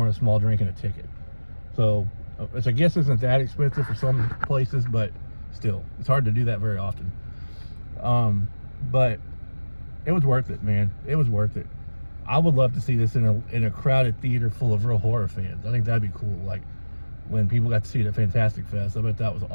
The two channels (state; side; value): inverted; both; correlation -1.00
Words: a small drink, and a ticket. So, which I guess isn't that expensive for some places, but still, it's hard to do that very often. But it was worth it, man. It was worth it. I would love to see this in a crowded theater full of real horror fans. I think that'd be cool. Like when people got to see it at Fantastic Fest, I bet that was